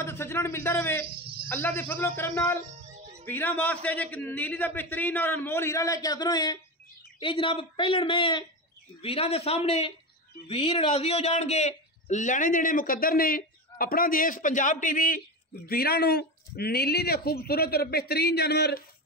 ते सज्जणां नूं मिलदा रहे। अल्लाह दे फजलो करम नाल वीरां वास्ते एक नीली दा बेहतरीन और अनमोल हीरा लैके हाज़र होए हैं। ये जनाब पहलन में वीरां दे सामने वीर राजी हो जाएंगे, लेने देने मुकद्दर ने। अपना देश पंजाब टीवी वीरां नूं नीली दे खूबसूरत और बेहतरीन जानवर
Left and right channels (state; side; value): normal; both; correlation 0.20